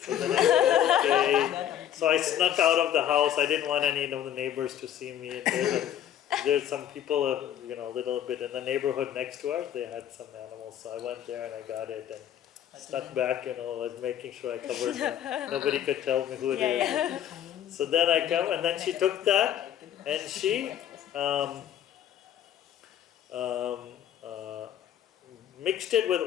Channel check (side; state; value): right; quieter; 10.6 dB